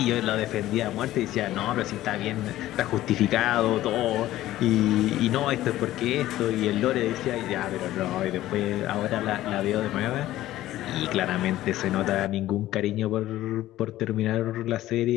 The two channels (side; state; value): right; quieter; 14.8 dB